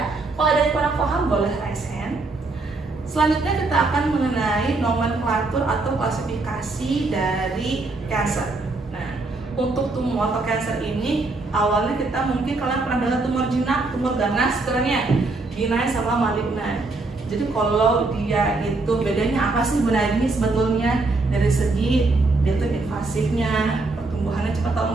Kalau ada yang kurang paham boleh raise hand. Selanjutnya kita akan mengenai nomenklatur atau klasifikasi dari kanker. Nah, untuk tumor atau kanker ini awalnya kita mungkin kalian pernah dengar tumor jinak, tumor ganas, benign sama malignan. Jadi kalau dia itu bedanya apa sih benign sebetulnya dari segi dia itu invasifnya, pertumbuhannya cepat atau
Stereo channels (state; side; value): quieter; left; 3.4 dB